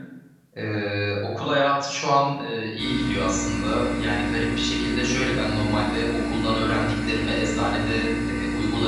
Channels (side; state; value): both; identical; correlation 1.00